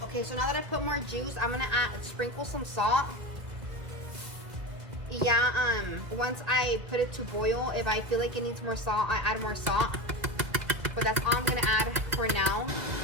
Okay, so now that I put more juice, I'm gonna sprinkle some salt. Yeah, once I put it to boil, if I feel like it needs more salt, I add more salt. But that's all I'm gonna add for now.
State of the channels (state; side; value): late; left; 2.0 ms